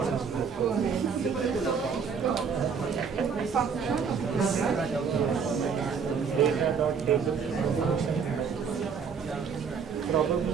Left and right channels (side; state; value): left; quieter; 6.1 dB